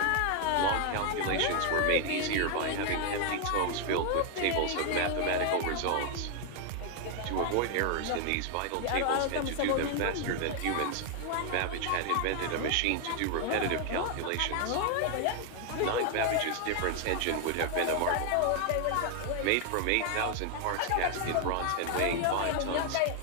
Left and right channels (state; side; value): different; both; correlation 0.00